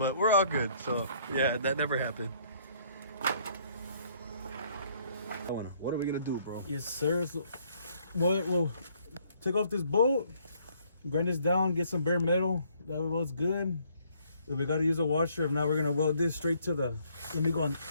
we're all good. So yeah, that never happened. What are we gonna do, bro? Yes, sir. So, we'll take off this bolt, grind this down, get some bare metal. That way welds good. If we gotta use a washer, if not, we're gonna weld this straight to the. Let me go on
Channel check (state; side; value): inverted; both; correlation -0.65